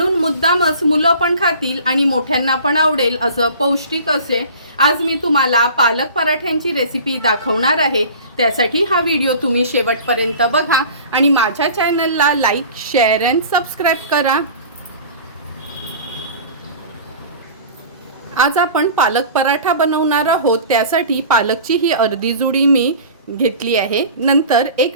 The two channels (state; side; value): inverted; both; correlation -0.41